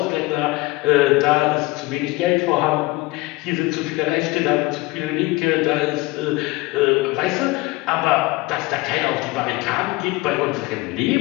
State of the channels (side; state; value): right; quieter; 22.1 dB